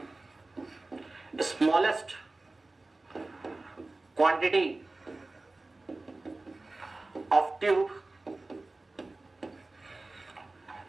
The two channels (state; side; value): quieter; left; 3.1 dB